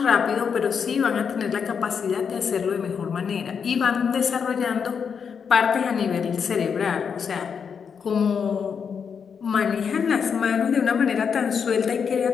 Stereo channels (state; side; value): quieter; right; 6.6 dB